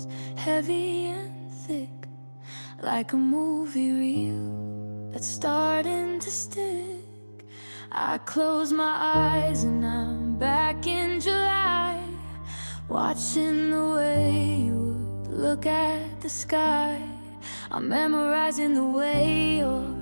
heavy and thick, like a movie reel that's starting to stick. I close my eyes and I'm back in July, watching the way you would look at the sky. I'm memorizing the way your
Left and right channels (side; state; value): both; inverted; correlation -1.00